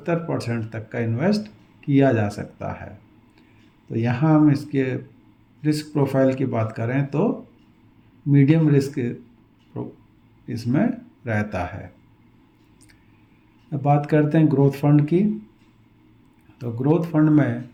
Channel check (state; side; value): identical; both; correlation 1.00